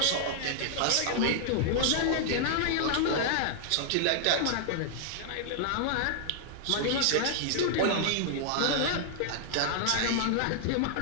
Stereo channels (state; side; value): different; both; correlation -0.01